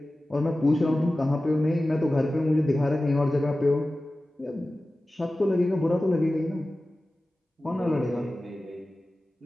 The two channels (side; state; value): both; normal; correlation 0.96